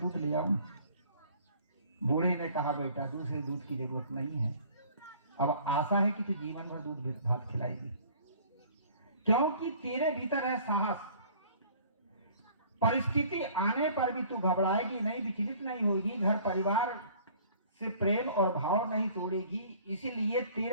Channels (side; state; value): both; inverted; correlation -0.52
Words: ले आऊं। बूढ़े ने कहा बेटा दूसरे दूध की जरूरत नहीं है, अब आशा है कि तू जीवन भर दूध भात खिलाएगी, क्योंकि तेरे भीतर है साहस। परिस्थिति आने पर भी तू घबराएगी नहीं, विचलित नहीं होगी, घर परिवार से प्रेम और भाव नहीं तोड़ेगी, इसीलिए